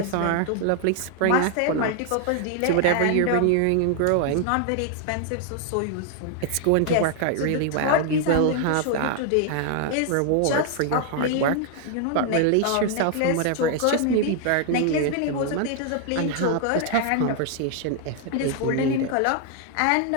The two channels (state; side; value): different; both; correlation 0.00